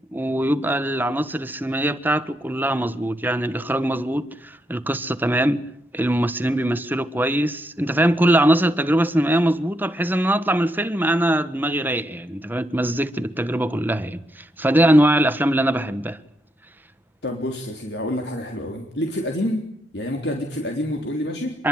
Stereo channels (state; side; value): normal; both; correlation 0.79